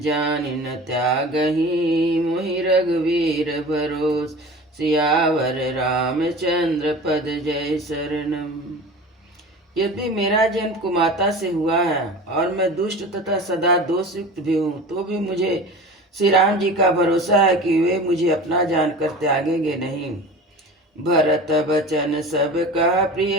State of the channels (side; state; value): both; normal; correlation 0.36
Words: न त्यागहि मोहि रघुवीर भरोस। सियावर रामचंद्र पद जय शरणम। यदि मेरा जन्म कुमाता से हुआ है और मैं दुष्ट तथा सदा दोषयुक्त भी हूँ, तो भी मुझे श्री राम जी का भरोसा है कि वे मुझे अपना जानकर त्यागेंगे नहीं। भरत बचन सब का